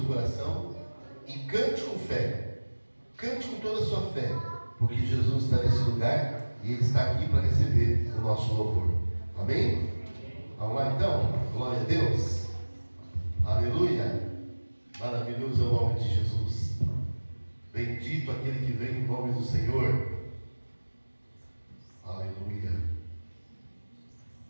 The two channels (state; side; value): inverted; both; correlation -1.00